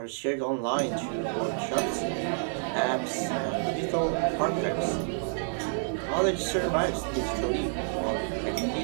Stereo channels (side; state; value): left; silent; 59 dB below the other